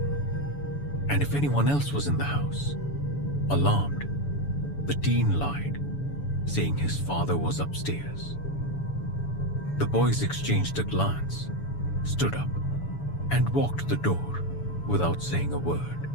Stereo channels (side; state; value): right; late; 7.0 ms